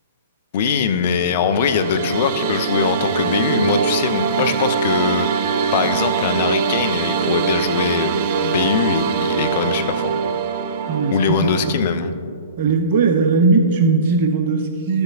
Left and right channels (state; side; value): inverted; both; correlation -0.39